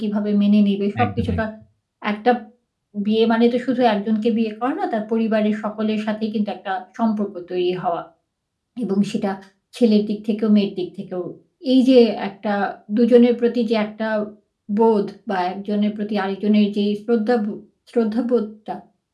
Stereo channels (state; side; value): identical; both; correlation 1.00